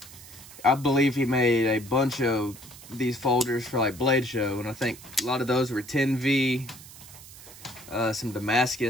I believe he made a bunch of these folders for like Blade Show, and I think a lot of those were 10V, some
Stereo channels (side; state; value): right; noise; hiss, 18 dB below the sound